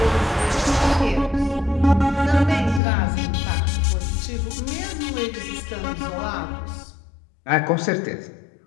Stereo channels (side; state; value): right; drops out; at 2.8 s